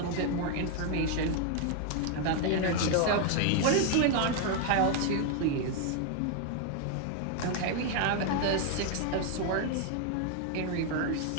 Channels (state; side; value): different; both; correlation 0.00